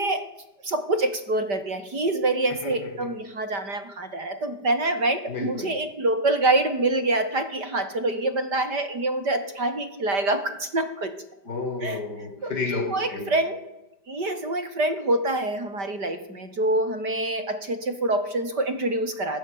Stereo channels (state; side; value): late; left; 5.1 ms